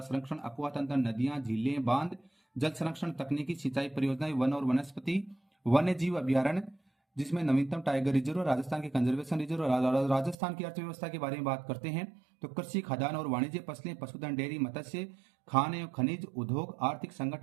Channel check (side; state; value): left; drops out; at 10.4 s